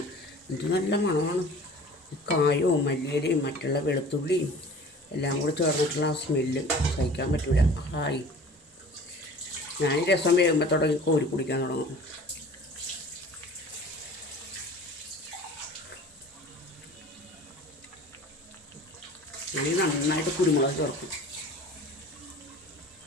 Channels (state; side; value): normal; both; correlation 0.44